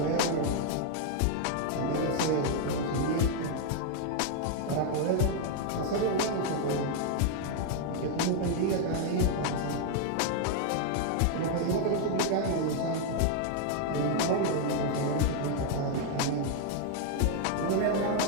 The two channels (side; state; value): both; different; correlation 0.00